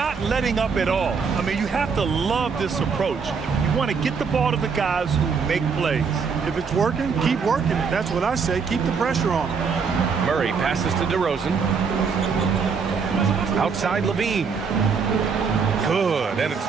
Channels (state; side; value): quieter; left; 5.7 dB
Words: letting up at all. I mean, you have to love this approach. You want to get the ball to the guys who make plays. If it's working, keep working it. That's what I say. Keep the pressure on. Murray passes to DeRozan. Outside Levine. Good, and it's